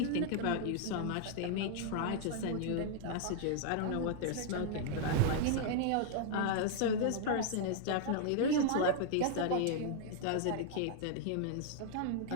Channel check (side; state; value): both; different; correlation -0.01